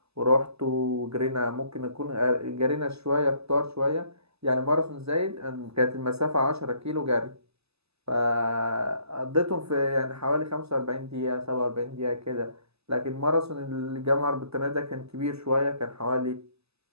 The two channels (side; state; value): left; late; 0.79 ms